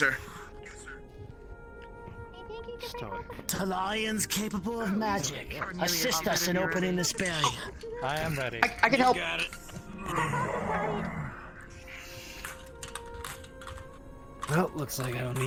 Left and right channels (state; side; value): identical; both; correlation 1.00